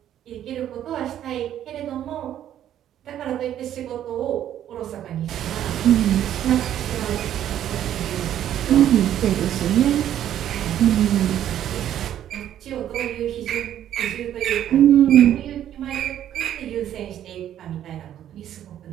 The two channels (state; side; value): quieter; left; 11.1 dB